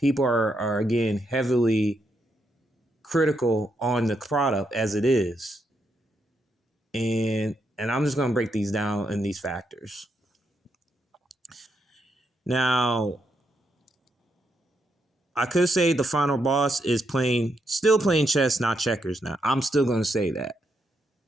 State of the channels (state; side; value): normal; both; correlation 0.80